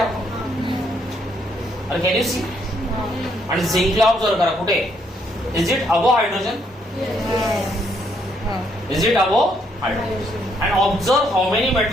आपको? और can you see? And zinc ला ऑब्जर्व करा कुठे. Is it above hydrogen? Is it above hydrogen? And observe how many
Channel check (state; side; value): normal; both; correlation 0.71